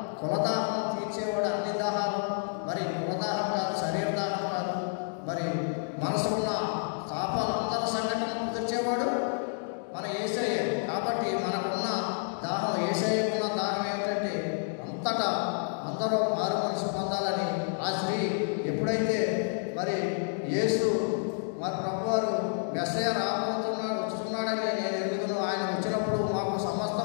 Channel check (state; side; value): silent; right; digital silence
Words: కులదాహం తీర్చేవాడు అన్ని దాహాలు, మరి కులదాహం కాదు, శరీర దాహం కాదు, మరి మనసు ఉన్న తాపాలు అందరి సంఘటనలు తెచ్చేవాడు మన యేసయ్య. కాబట్టి మనకున్న దాహం, యేసయ్యకున్న దాహం ఏమిటంటే అంతటా అందరూ మారు మనసు పొందాలని. ఆ స్త్రీ ఎప్పుడైతే మరి యేసు మరి ప్రభువారు మెస్సయ్య వస్తున్నాడని నేను ఎరుగుతున్నాను, ఆయన వచ్చినప్పుడు మాకు